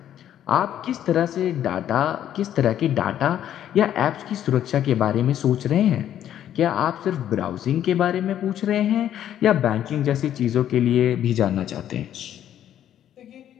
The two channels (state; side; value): quieter; right; 10.8 dB